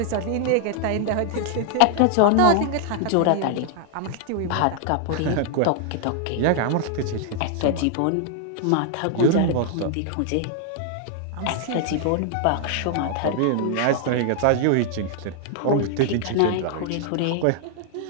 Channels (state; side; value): different; both; correlation 0.00